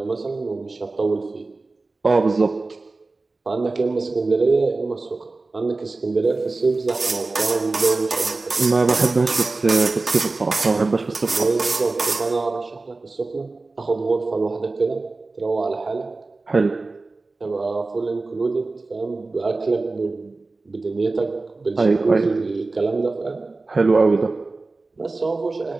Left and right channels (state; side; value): quieter; left; 3.5 dB